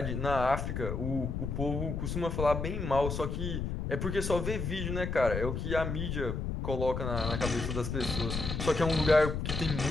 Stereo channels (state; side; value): noise; left; rumble, 3 dB below the sound